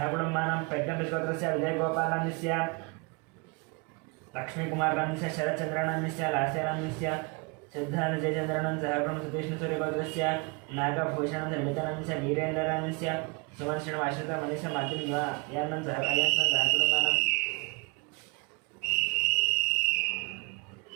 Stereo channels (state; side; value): quieter; left; 30.0 dB